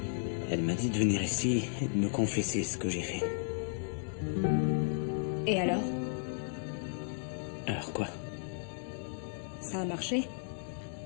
Elle m'a dit de venir ici et de me confesser ce que j'ai fait. Et alors? Alors quoi? Ça a marché?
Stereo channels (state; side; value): silent; right; 55 dB below the other